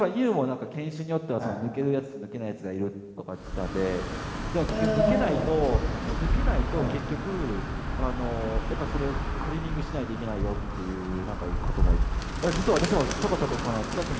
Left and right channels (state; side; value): identical; both; correlation 1.00